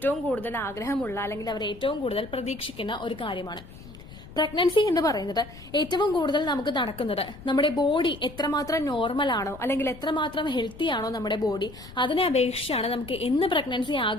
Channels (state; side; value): noise; left; rumble, 17 dB below the sound